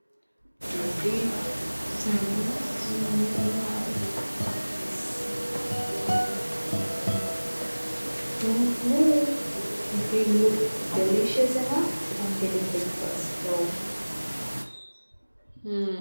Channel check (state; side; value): inverted; both; correlation -1.00